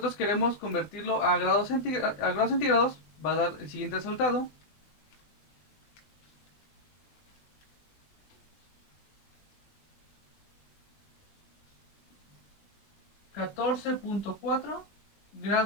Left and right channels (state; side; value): late; right; 20 ms